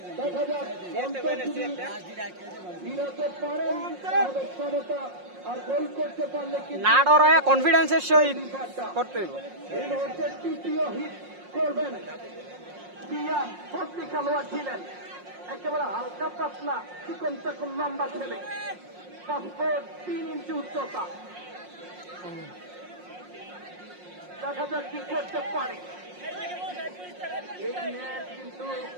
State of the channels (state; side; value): late; left; 5.6 ms